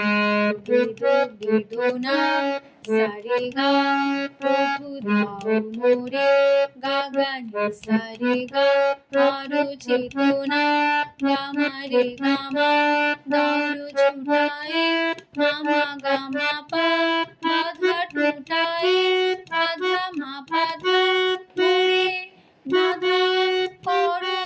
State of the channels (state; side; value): identical; both; correlation 1.00